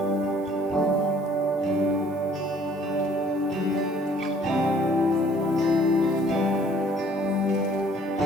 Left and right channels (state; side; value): normal; both; correlation 0.57